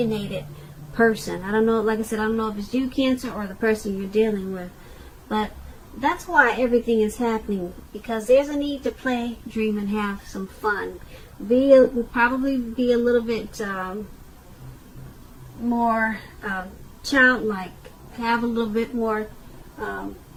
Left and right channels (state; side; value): identical; both; correlation 1.00